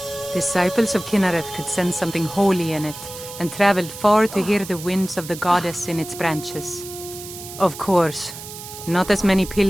Disciples of Kynareth could sense something holy in it, and traveled far to hear the winds of the goddess in its branches. Of course, not as many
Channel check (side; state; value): right; noise; hiss, 13 dB below the sound